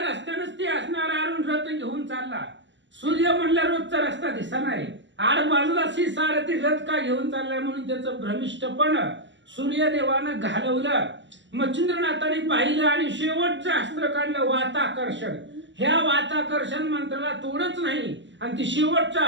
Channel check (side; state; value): left; late; 0.54 ms